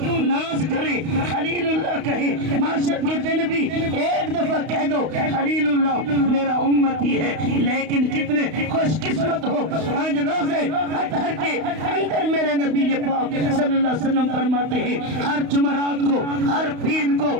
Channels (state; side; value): late; left; 32 ms